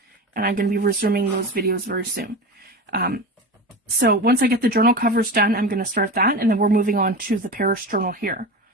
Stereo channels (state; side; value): normal; both; correlation 0.26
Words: and I'm going to be resuming those videos very soon. So once I get the journal covers done, I'm going to start that, and then we're moving on to the Paris journal here.